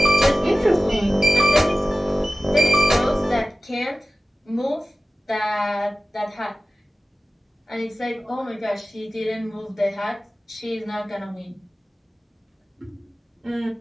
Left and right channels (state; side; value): normal; both; correlation 0.95